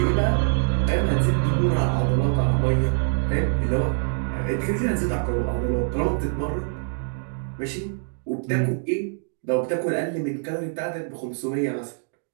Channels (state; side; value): silent; left; digital silence